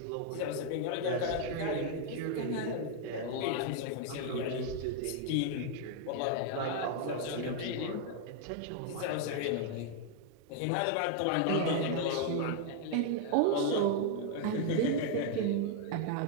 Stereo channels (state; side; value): different; both; correlation 0.00